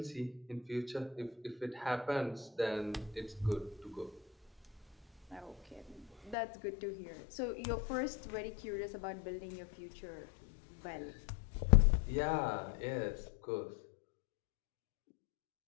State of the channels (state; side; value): drops out; right; at 6.4 s